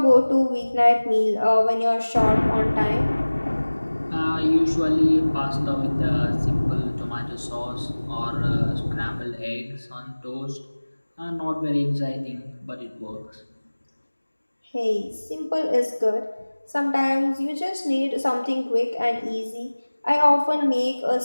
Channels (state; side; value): inverted; both; correlation -1.00